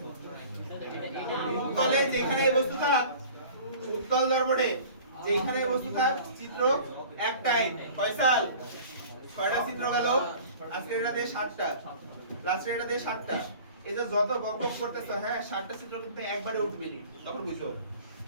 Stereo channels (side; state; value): both; inverted; correlation -0.44